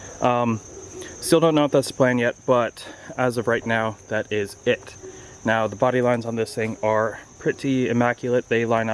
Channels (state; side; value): identical; both; correlation 1.00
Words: Still don't know if that's the plan yet, but as of right now, that is it. Now the body lines on this thing are pretty immaculate. They line